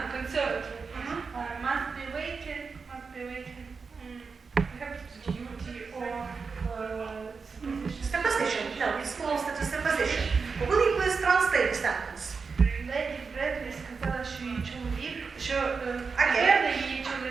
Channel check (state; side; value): quieter; left; 5.0 dB